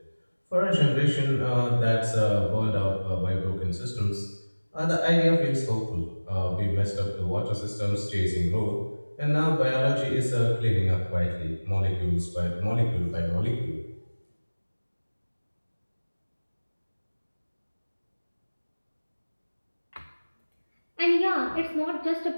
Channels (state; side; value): inverted; both; correlation -1.00